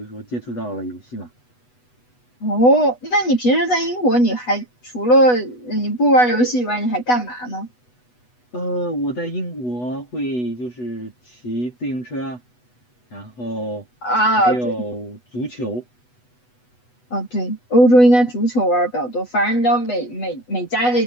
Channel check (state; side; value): late; right; 8.1 ms